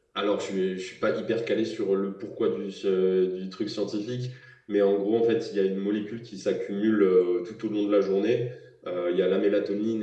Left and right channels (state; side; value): identical; both; correlation 1.00